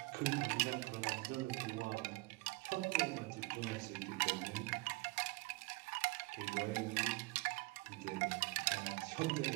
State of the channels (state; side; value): quieter; left; 24.6 dB